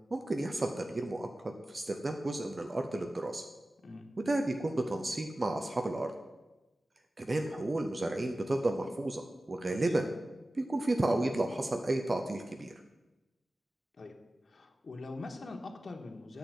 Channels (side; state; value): both; normal; correlation 0.96